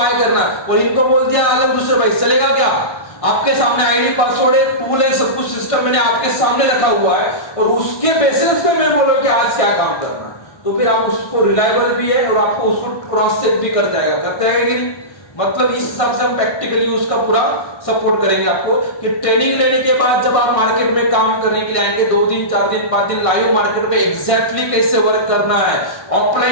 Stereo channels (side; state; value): right; late; 1.6 ms